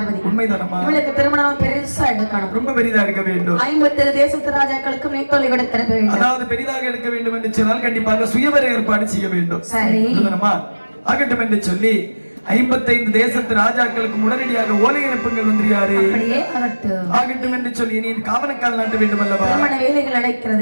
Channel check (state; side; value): inverted; both; correlation -1.00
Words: உண்மைதானம்மா. இவளுக்கு திருமணம் பெருசா எடுக்கணும். ரொம்ப பெரிதா எடுக்க வேண்டும். 57 தேசத்து ராஜாக்களுக்கும் நீட்டொலி கொடுத்திட வேண்டும். அதாவது பெரிதாக எடுக்க வேண்டும் என்று சொன்னால் கண்டிப்பாக சுயவர ஏற்பாடு செய்ய வேண்டும். சரி ஆகட்டும் என்று சொல்லி 55 தேசத்து ராஜாக்களுக்கு உடனடியாக ஓலை அனுப்புங்கள் வந்துறியாரு. ஆகட்டும் என்று சொல்லி நீ காவனக்கால் நாட்ட வேண்டும் அல்லவா. திருமண வேலைகள்